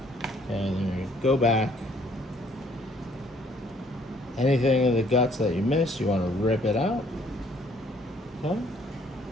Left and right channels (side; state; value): both; normal; correlation 0.62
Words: And then you're gonna go back. Anything in the guts that you missed, you wanna rip it out. Okay.